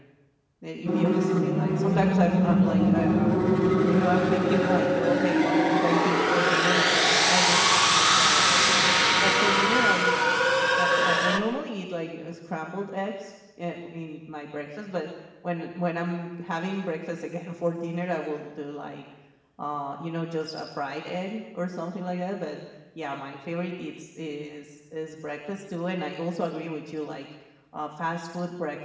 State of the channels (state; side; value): identical; both; correlation 1.00